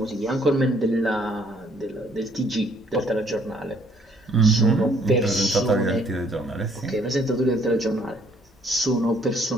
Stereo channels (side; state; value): both; normal; correlation 0.64